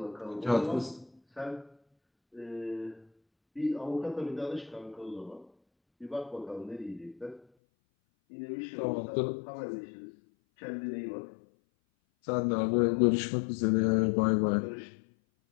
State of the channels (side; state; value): right; drops out; at 7.5 s